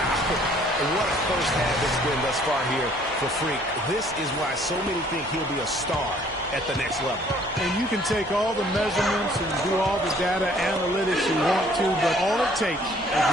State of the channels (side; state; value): both; normal; correlation 0.59